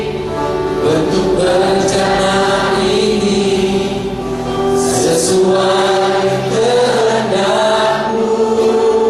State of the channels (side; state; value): both; identical; correlation 1.00